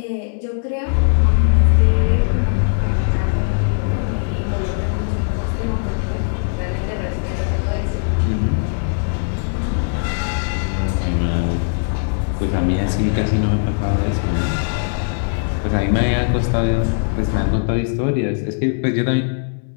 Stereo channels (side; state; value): right; silent; 66 dB below the other